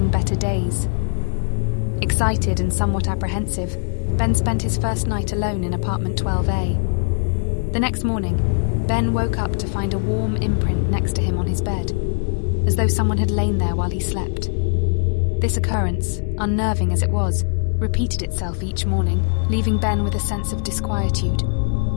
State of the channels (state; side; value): silent; right; 65 dB below the other